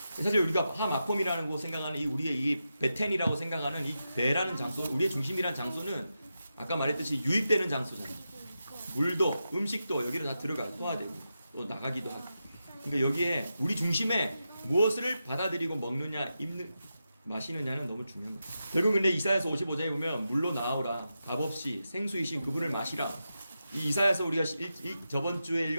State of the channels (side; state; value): both; inverted; correlation -0.89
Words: 사실 우리가 하마콤이라는 거 생각하는 우리의 이 베텐이라고 생각하는 이 배라는 장소, 우리의 중심이라는 장소는 아까 말했듯이 유입되는 장소잖아요. 물도 음식도 여기로 다 들어가요. 소화되고 또 나가기도 하고. 그러니까 여기에 우리 중심에 무엇을 받아들이고 먹느냐, 마시느냐는 너무 중요한 거예요. 결국 근데 이사야서 55장에 보면 물로 나오라 값없이 생수이신 그분을 마시라. 이 이사야서 우리가 저번 주에